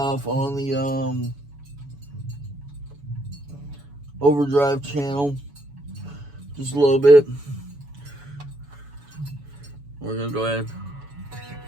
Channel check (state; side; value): late; left; 7.1 ms